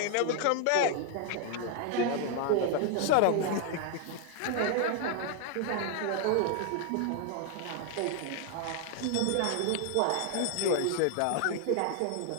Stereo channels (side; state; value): both; different; correlation 0.00